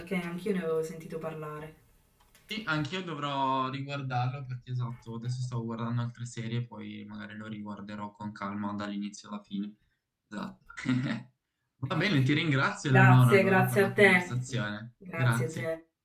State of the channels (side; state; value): both; identical; correlation 1.00